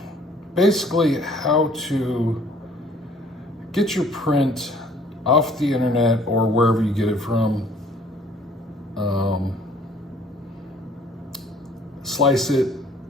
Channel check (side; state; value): both; normal; correlation 0.57